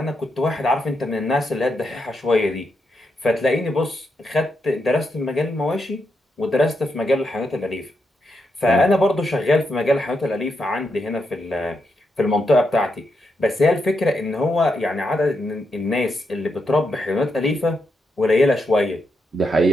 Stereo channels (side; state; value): both; normal; correlation 0.83